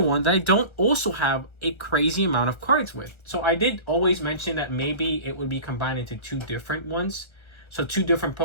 that I don't also have a crazy amount of cards with. So, I did always mention that maybe it would be combined into two different ones. So, two different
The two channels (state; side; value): late; right; 1.3 ms